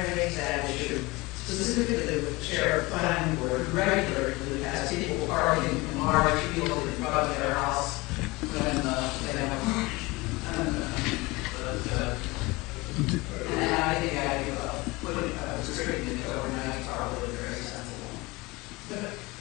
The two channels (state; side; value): quieter; right; 22.9 dB